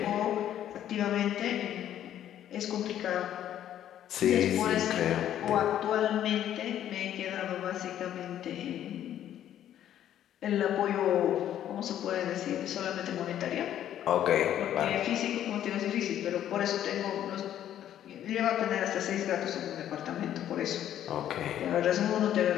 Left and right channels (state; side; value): quieter; right; 11.1 dB